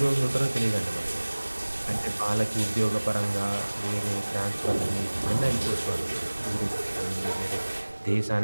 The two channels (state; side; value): inverted; both; correlation -1.00